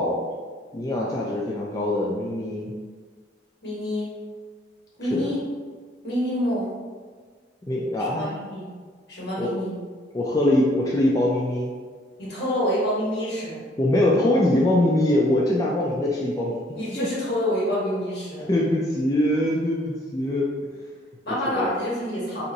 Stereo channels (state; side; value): normal; both; correlation 0.62